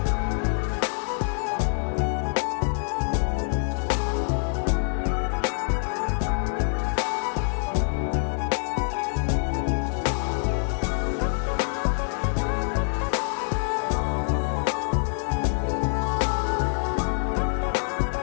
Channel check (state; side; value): silent; right; digital silence